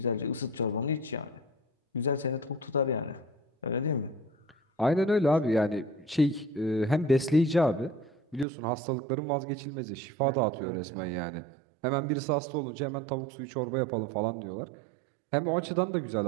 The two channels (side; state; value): left; drops out; at 8.5 s